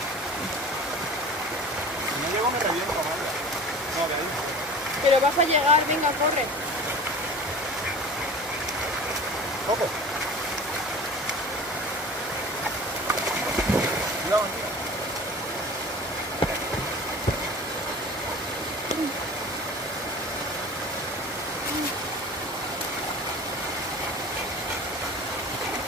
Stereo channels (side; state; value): both; normal; correlation 0.39